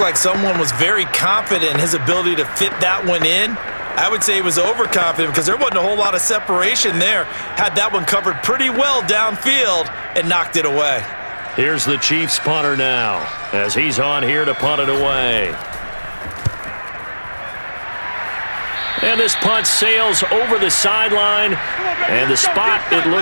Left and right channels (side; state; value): both; inverted; correlation -1.00